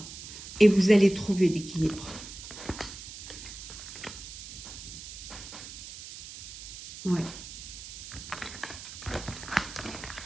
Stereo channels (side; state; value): right; noise; hiss, 12 dB below the sound